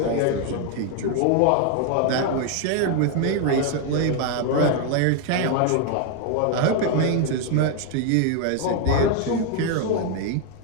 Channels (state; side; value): different; both; correlation 0.01